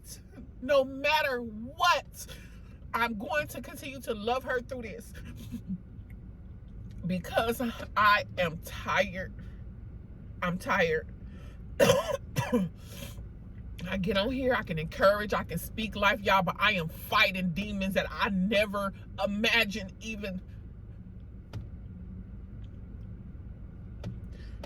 No matter what. I'm going to continue to love her through this. Because I am tired. I'm tired. I get on here, I can encourage, I can speak life, y'all, but I am fighting demons that I never imagined even.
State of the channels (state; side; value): identical; both; correlation 1.00